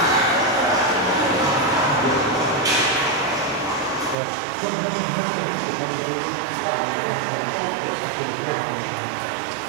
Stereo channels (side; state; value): left; drops out; at 4.2 s